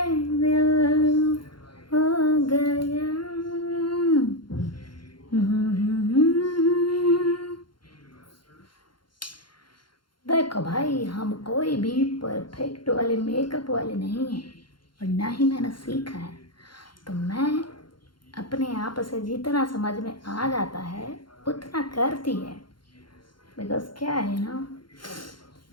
दिल हो गया। देखो भाई, हम कोई भी परफेक्ट वाले मेकअप वाले नहीं हैं, और ना ही मैंने सीखा है, तो मैं अपने आप से जितना समझ में आ जाता है उतना करती है। बिकॉज क्या है ना,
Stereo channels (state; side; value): late; right; 0.72 ms